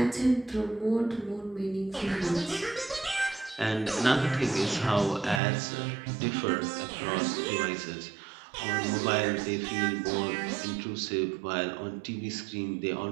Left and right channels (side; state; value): left; drops out; at 5.4 s